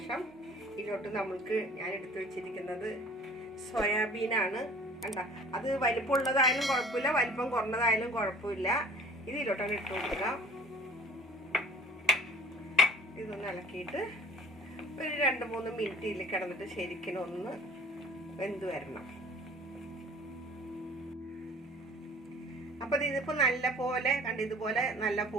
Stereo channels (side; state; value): both; normal; correlation 0.48